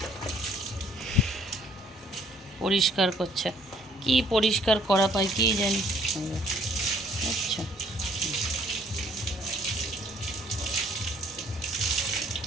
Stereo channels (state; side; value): normal; both; correlation 0.60